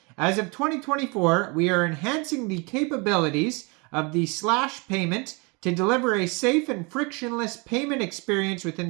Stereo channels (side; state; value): left; quieter; 29.7 dB